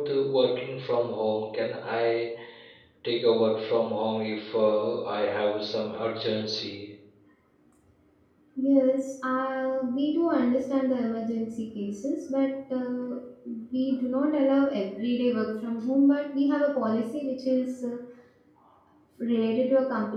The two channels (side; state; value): both; identical; correlation 1.00